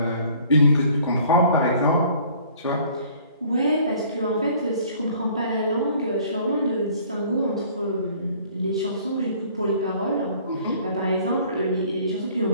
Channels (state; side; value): inverted; both; correlation -0.55